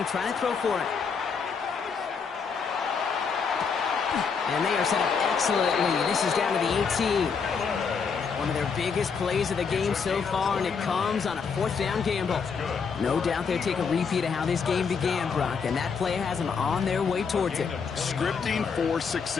to try to throw for it. And they are set up excellently. This is down to the 18. One of their biggest plays of the game so far, and it comes on a 4th down gamble. No doubt they'll take a repeat of how this game began, Brock, and that play has them on their way towards it. Scripting for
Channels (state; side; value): quieter; right; 5.8 dB